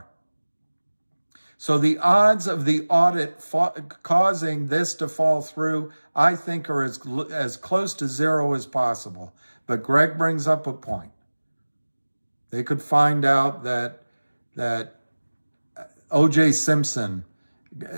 So the odds of the audit causing this to fall through, I think, are as close to zero as possible. But Greg brings up a point. They could find out that O.J. Simpson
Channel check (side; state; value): both; inverted; correlation -1.00